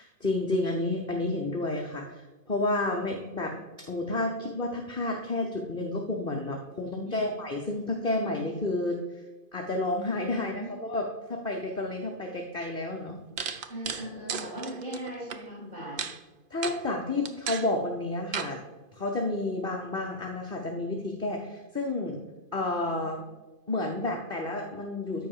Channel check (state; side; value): late; left; 2.5 ms